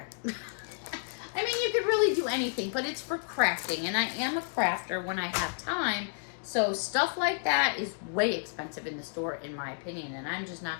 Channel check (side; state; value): right; silent; digital silence